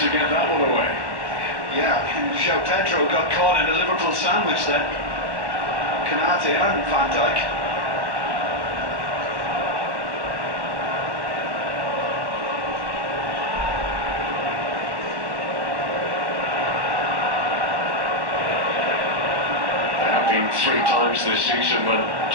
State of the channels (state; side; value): late; left; 1.1 ms